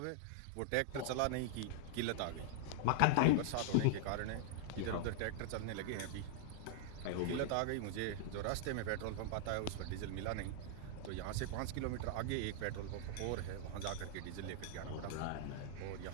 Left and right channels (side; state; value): both; different; correlation -0.01